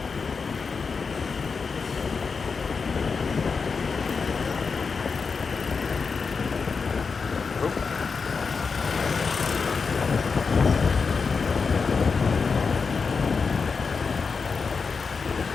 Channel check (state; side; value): quieter; right; 5.1 dB